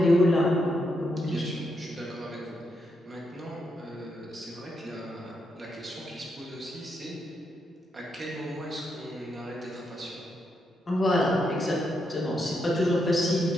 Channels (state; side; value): normal; both; correlation 0.81